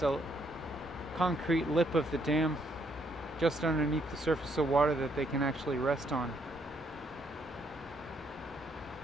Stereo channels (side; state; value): both; normal; correlation 0.71